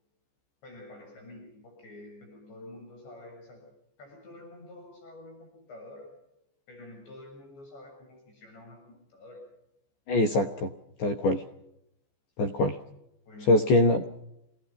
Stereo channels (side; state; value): right; late; 14 ms